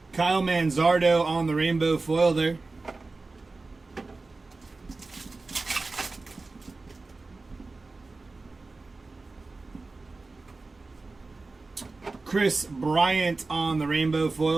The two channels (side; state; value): left; quieter; 3.6 dB